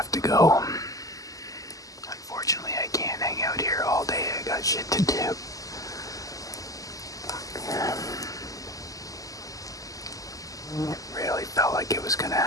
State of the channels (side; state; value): right; late; 0.17 ms